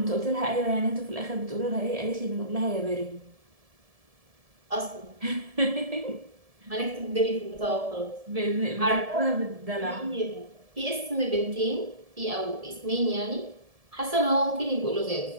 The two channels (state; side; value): late; left; 1.7 ms